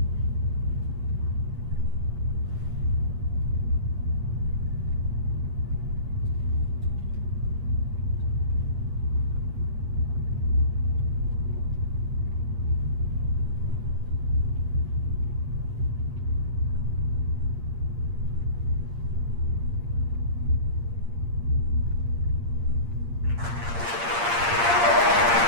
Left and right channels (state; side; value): late; left; 8.6 ms